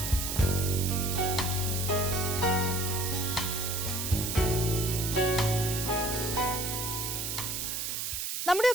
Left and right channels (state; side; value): noise; right; hiss, 3 dB below the sound